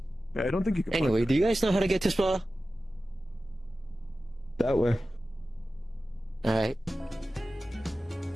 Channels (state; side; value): normal; both; correlation 0.95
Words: Yeah, I don't think you can. Anyway, do you guys know how to get to Spa? That way. Alright.